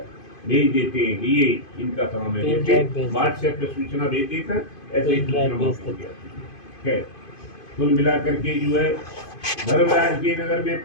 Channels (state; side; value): late; right; 2.5 ms